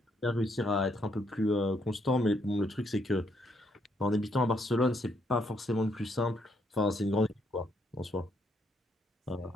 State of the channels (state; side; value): normal; both; correlation 0.74